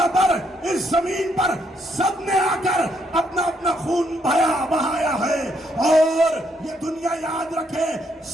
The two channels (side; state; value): both; normal; correlation 0.73